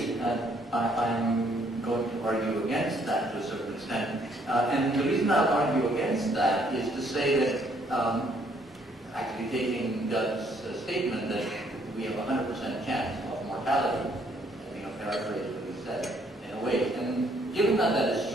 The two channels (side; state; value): both; normal; correlation 0.67